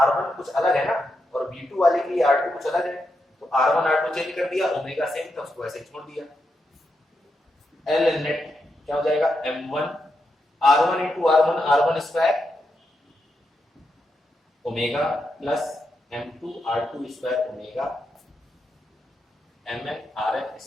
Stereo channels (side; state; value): both; normal; correlation 0.84